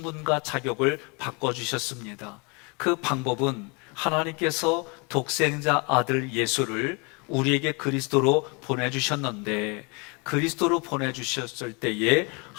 자격을 바꿔주셨습니다. 그 방법은 하나님께서 독생자 아들 예수를 우리에게 그리스도로 보내주셨는데, 그리스도로 보내주셨을 때에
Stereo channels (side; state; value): right; quieter; 31.0 dB